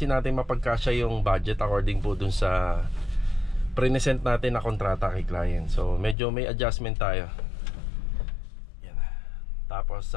natin mapagkasya yung budget according po dun sa present natin na kontrata kay client. So medyo may adjustment tayo. Yan. Tapos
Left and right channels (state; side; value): drops out; right; at 6.2 s